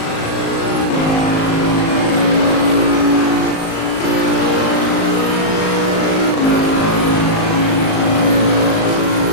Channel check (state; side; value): late; right; 38 ms